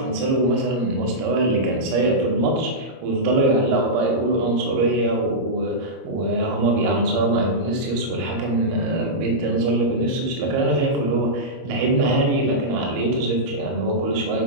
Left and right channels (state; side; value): late; left; 22 ms